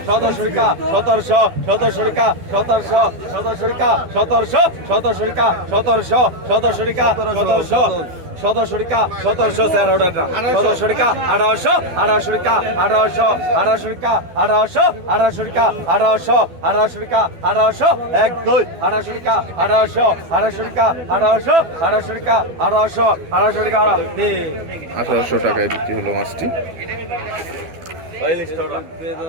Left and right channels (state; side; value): late; left; 12 ms